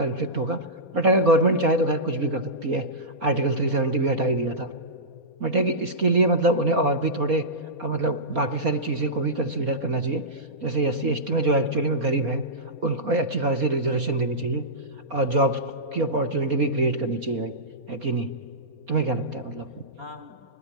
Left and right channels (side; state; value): left; late; 4.2 ms